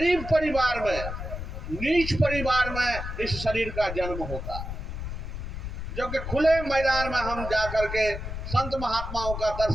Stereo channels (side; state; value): left; noise; rumble, 6 dB below the sound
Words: परिवार में, नीच परिवार में इस शरीर का जन्म होता, जो कि खुले मैदान में हम जाकर के संत महात्माओं का